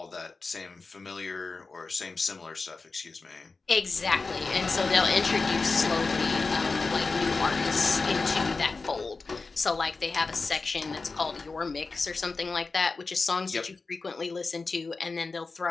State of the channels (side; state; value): right; quieter; 4.0 dB